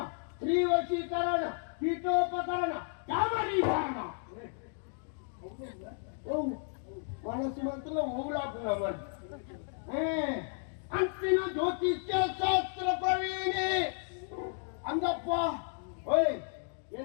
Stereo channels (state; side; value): silent; right; 56 dB below the other